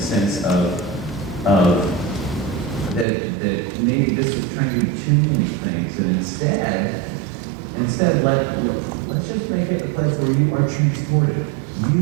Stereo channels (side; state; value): left; drops out; at 3.1 s